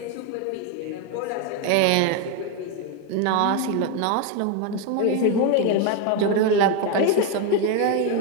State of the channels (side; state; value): both; different; correlation 0.01